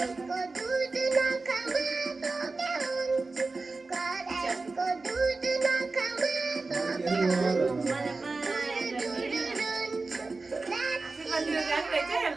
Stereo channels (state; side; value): quieter; left; 3.7 dB